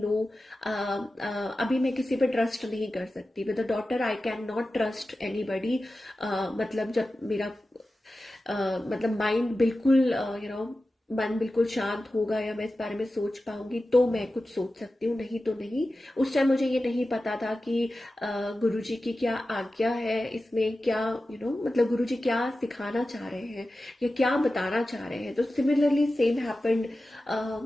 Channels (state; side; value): normal; both; correlation 0.94